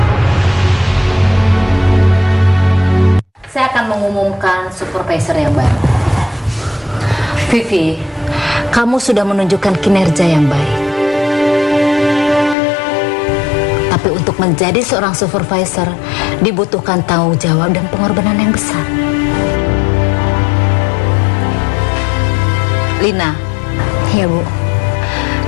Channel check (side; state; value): right; drops out; at 12.6 s